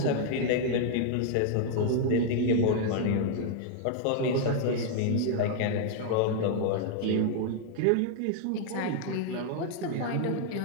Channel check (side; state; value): both; different; correlation 0.00